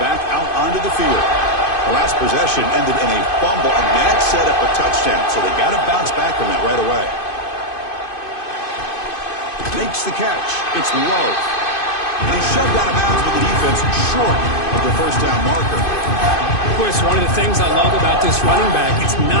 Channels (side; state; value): right; late; 2.5 ms